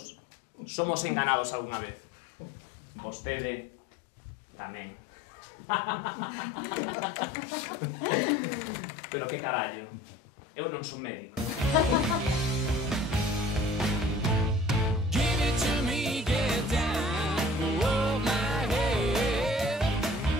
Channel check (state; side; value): normal; both; correlation 0.48